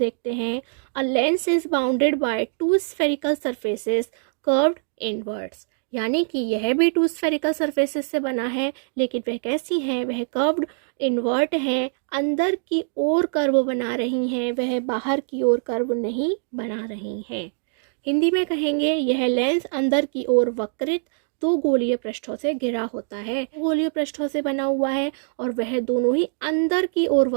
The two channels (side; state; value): left; silent; 63 dB below the other